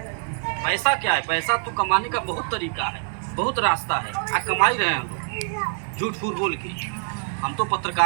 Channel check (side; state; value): left; silent; 59 dB below the other